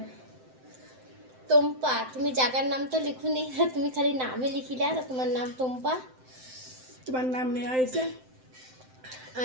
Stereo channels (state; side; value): late; left; 7.8 ms